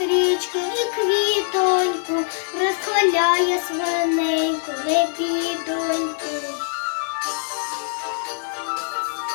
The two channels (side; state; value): right; silent; 64 dB below the other